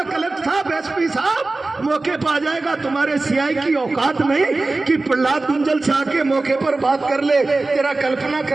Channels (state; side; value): quieter; left; 3.3 dB